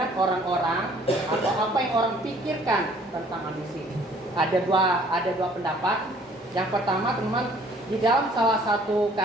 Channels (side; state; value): both; normal; correlation 0.57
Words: orang-orang atau apa yang orang pikirkan tentang ambisi. Ada dua pendapat. Yang pertama teman-teman, di dalam salah satu